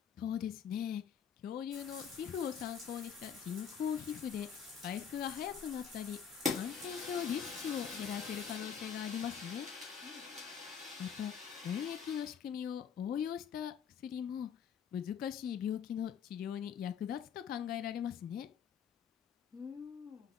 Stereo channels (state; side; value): quieter; right; 7.5 dB